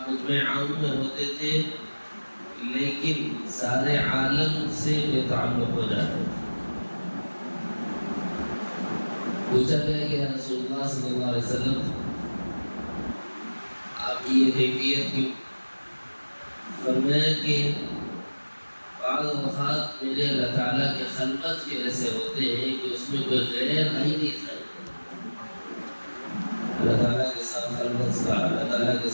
خطبہ عام میں ہوتے تھے لیکن سارے عالم سے بے تعلق ہو جاتے تھے۔ پوچھا گیا کہ یا رسول اللہ صلی اللہ علیہ وسلم آپ کی یہ کیفیت کیوں؟ فرمایا کہ بعض اوقات میرے اللہ تعالیٰ کے خلوت کے ایسے ہوتے ہیں کہ اس میں کوئی غیر آئی نہیں تھا۔ اللہ تعالیٰ کے ساتھ خلوت کا، اللہ تعالیٰ کے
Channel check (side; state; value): both; inverted; correlation -1.00